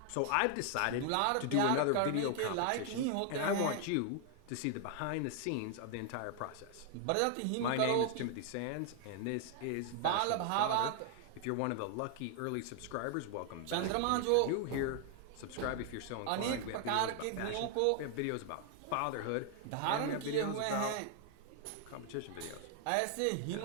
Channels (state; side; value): different; both; correlation 0.00